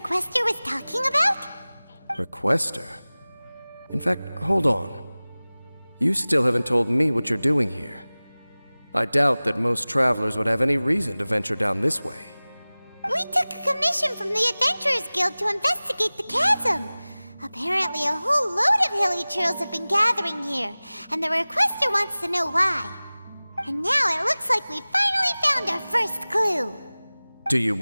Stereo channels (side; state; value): both; inverted; correlation -0.99